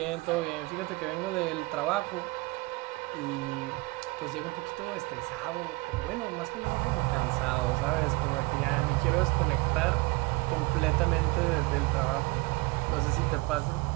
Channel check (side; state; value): left; quieter; 24.4 dB